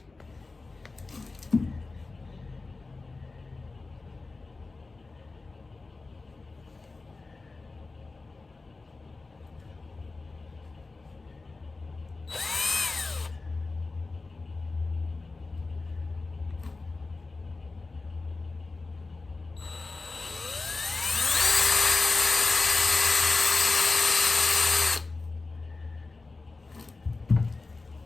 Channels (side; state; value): right; quieter; 3.7 dB